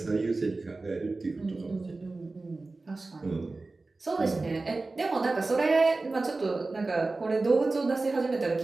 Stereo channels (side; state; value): left; quieter; 3.4 dB